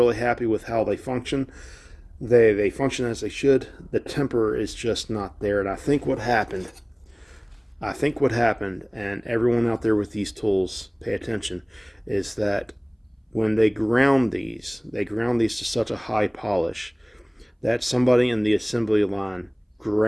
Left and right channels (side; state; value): both; identical; correlation 1.00